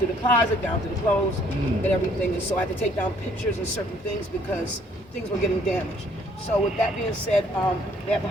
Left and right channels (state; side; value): normal; both; correlation 0.62